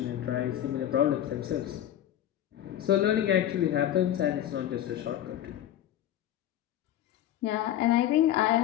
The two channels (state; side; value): quieter; right; 11.8 dB